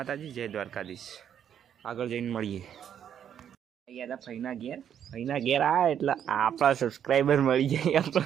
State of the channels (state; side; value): quieter; left; 9.1 dB